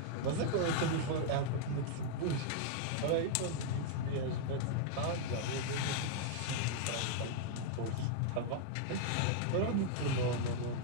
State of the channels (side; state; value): both; different; correlation -0.01